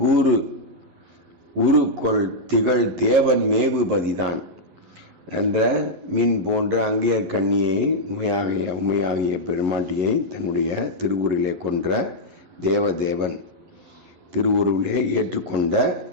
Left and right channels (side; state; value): left; late; 11 ms